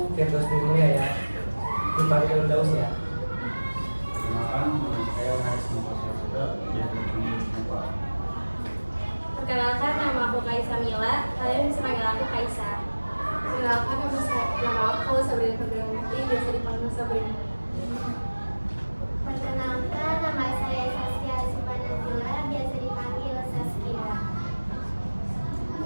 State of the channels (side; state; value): both; inverted; correlation -1.00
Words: Firdaus Mulia ya, dipanggil Daus ya. Perkenalkan, nama aku Kaisa Mila. Kalian bisa panggil aku Kaisa. Perkenalkan, nama aku Sabrina Ferdianti, biasa dipanggil Sabrina. Perkenalkan, nama saya Saskia Supanazila, biasa dipanggil Saskia.